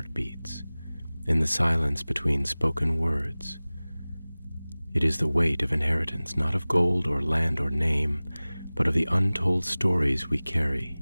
in the silence between spoken words. It is the weight of inheritance, not of gold or land or name, but of the untold stories we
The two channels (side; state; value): both; inverted; correlation -0.99